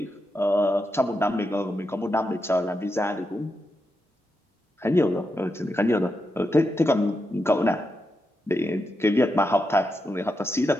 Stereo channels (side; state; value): both; normal; correlation 0.85